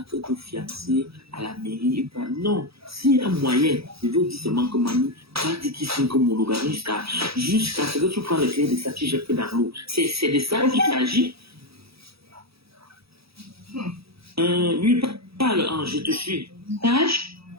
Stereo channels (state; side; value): late; left; 0.77 ms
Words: que te fiancer à la mairie. Non, s'il y a un moyen, je veux dire seulement que mamie, va dire qu'il signe comme monogamie jusqu'à ce que tu prends les clés de ça, tu jettes dans l'eau. C'est de ça qu'il s'agit. Lui parle, je te suis.